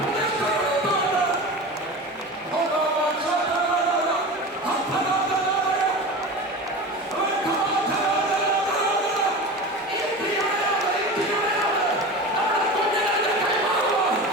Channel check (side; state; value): both; normal; correlation 0.30